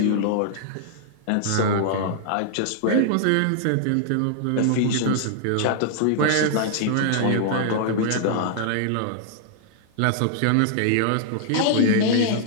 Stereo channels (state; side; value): different; both; correlation -0.01